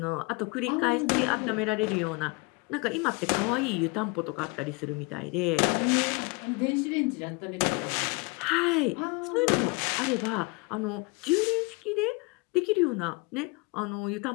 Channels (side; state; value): right; quieter; 27.1 dB